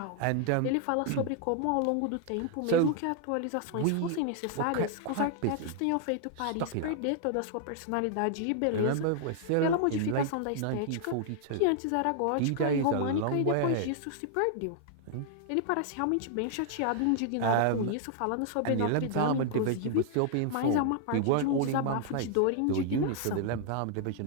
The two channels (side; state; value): both; different; correlation 0.00